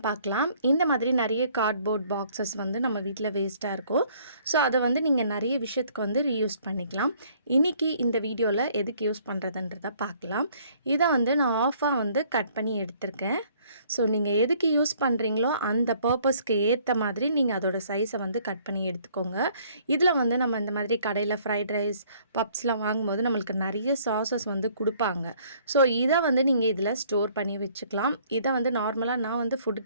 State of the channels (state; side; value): inverted; both; correlation -0.61